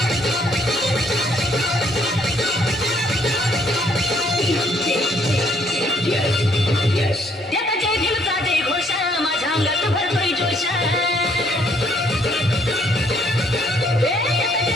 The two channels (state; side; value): normal; both; correlation 0.66